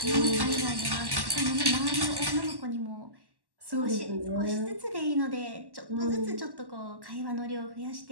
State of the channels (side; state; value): left; late; 1.1 ms